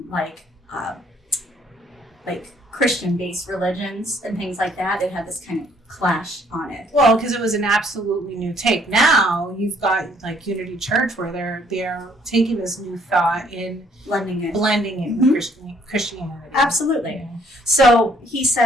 like Christian-based religions and things like that. It had this kind of clash on it. Well, because it was an absolutely new take. Now you've got like Unity Church where they're taking this new thought and blending it with Christianity. Absolutely. Yeah. So he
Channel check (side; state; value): both; normal; correlation 0.64